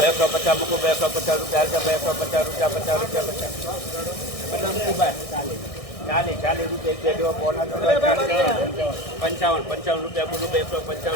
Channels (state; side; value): late; right; 1.6 ms